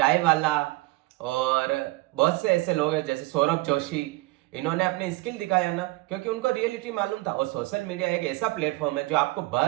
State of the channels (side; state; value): left; quieter; 21.0 dB